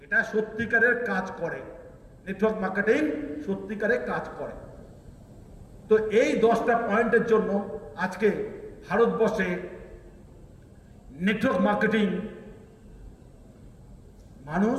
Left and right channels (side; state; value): both; identical; correlation 1.00